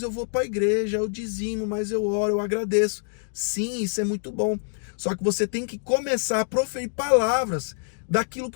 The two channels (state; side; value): silent; right; 61 dB below the other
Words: eu vou para a igreja, eu dizimo, mas eu oro, eu agradeço. Sim, isso é muito bom. Só que você tem que começar a proferir palavras daquilo